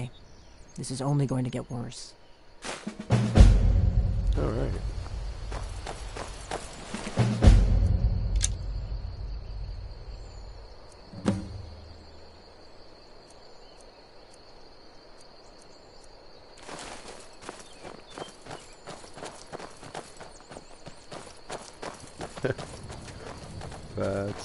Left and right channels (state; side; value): identical; both; correlation 1.00